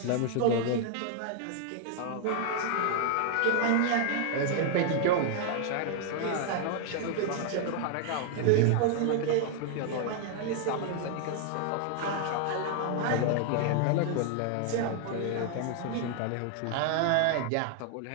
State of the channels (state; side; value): different; both; correlation 0.00